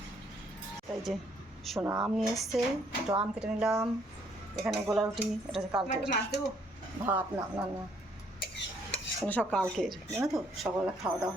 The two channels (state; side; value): normal; both; correlation 0.67